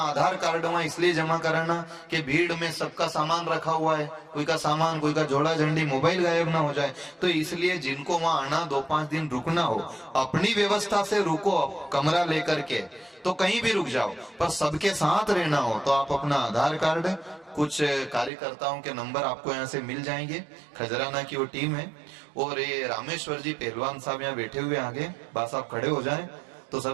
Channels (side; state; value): left; drops out; at 18.3 s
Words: कार्ड वहां इसलिए जमा कराना कि भीड़ में सबका सामान रखा हुआ है, कोई का सामान, कोई का झोला झंडी, मोबाइल गायब ना हो जाए। तो इसलिए जिनको वहां आना 2-5 दिन रुकना हो, अपनी व्यवस्था से रुको, कमरा लेकर के, तो कहीं भी रुक जाओ, पर सबके साथ रहना हो तो आप अपना आधार कार्ड, कुछ कार्यकर्ताओं के नंबर आपको यहाँ से मिल जाएंगे। खजराना की वो टीम है, और ये रामेश्वर जी पहलवान साहब यहाँ बैठे हुए आगे, बस आप खड़े हो जाएं तो